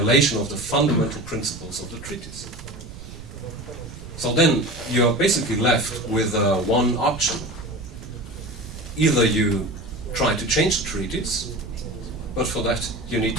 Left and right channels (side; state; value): right; noise; rumble, 14 dB below the sound